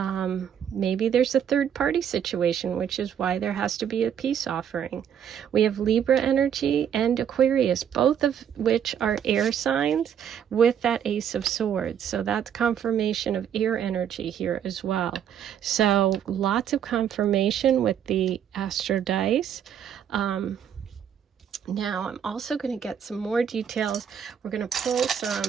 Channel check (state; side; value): quieter; left; 8.9 dB